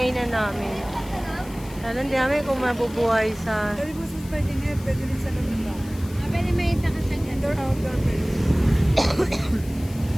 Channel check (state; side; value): noise; left; hiss, 20 dB below the sound